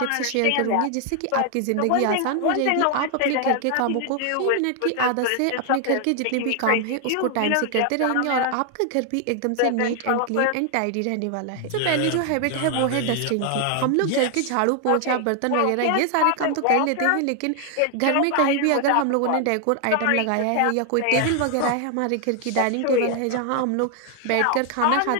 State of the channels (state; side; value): different; both; correlation 0.00